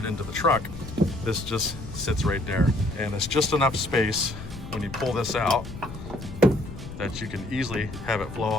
into the truck, this just sits right there. And it's just enough space when you pull this out that you can easily have it flow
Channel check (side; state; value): left; noise; rumble, 11 dB below the sound